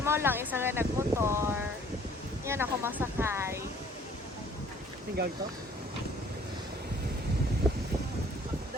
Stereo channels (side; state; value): both; normal; correlation 0.57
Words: mo lang isa nga nagmotor. Yan ako masakay. Tinggal to?